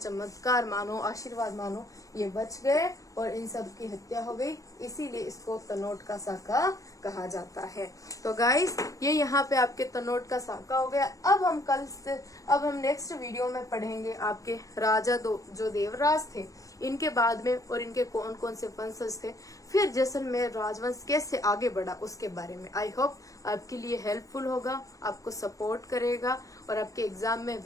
मानो, आशीर्वाद मानो, ये बच गए और इन सब की हत्या हो गई। इसीलिए इसको तनोट का साका कहा जाता है। तो गाइस ये यहाँ पे आपके तनोट का साका हो गया। अब हम नेक्स्ट वीडियो में पढ़ेंगे आपके राजा जो देवराज थे, इनके बाद में और इनके कौन कौन से वंशज थे, फिर जैसलमेर राजवंश कैसे आगे बढ़ा उसके बारे में। आई होप आपके लिए हेल्पफुल होगा, आपको सपोर्ट करेगा और आपके एग्जाम में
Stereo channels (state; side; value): late; right; 0.16 ms